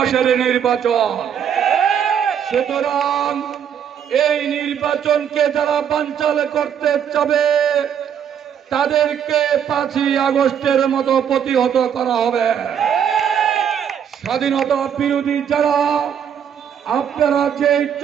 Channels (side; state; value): left; quieter; 8.5 dB